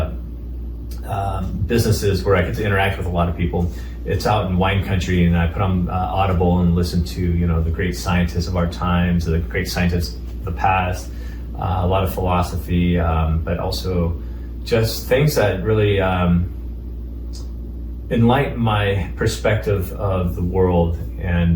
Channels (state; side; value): identical; both; correlation 1.00